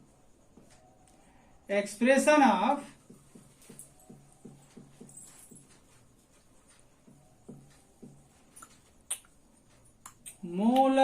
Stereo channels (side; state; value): both; identical; correlation 1.00